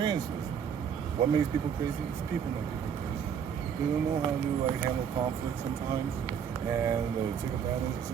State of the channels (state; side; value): quieter; left; 7.7 dB